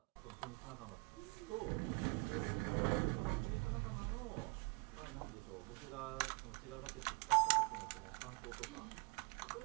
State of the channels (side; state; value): left; quieter; 29.1 dB